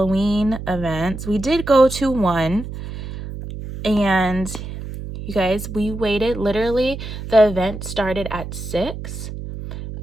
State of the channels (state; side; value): noise; right; hum, 9 dB below the sound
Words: events, we did go to one, and you guys, we waited. Literally, the event started at 6.